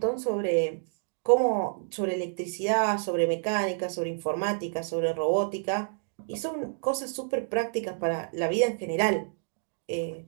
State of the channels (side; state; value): left; silent; digital silence